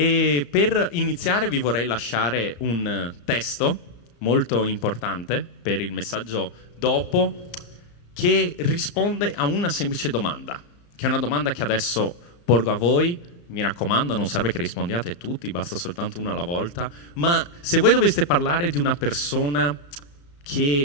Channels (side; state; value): right; late; 35 ms